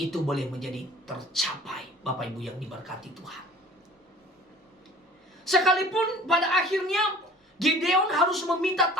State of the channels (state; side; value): normal; both; correlation 0.48